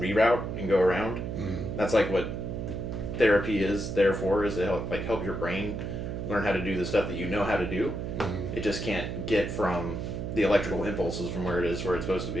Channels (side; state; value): right; noise; hum, 4 dB below the sound